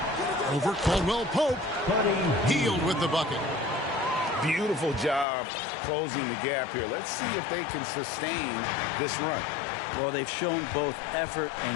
Over Caldwell Pope. Hield with the bucket. Beautiful job closing the gap here. Let's see if they can sustain this run. Well, they've shown both effort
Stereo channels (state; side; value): drops out; right; at 5.2 s